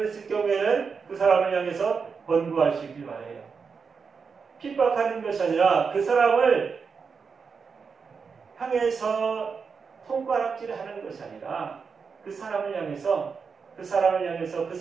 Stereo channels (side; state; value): left; quieter; 5.6 dB